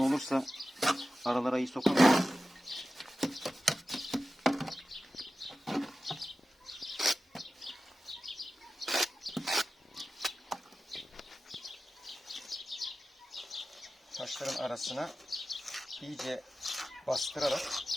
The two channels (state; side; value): normal; both; correlation 0.94